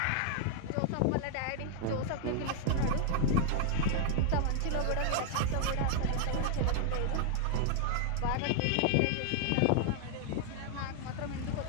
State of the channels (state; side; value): different; both; correlation 0.00